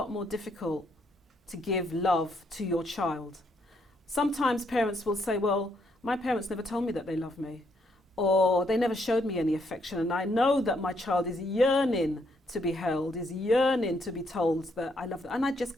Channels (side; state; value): both; normal; correlation 0.74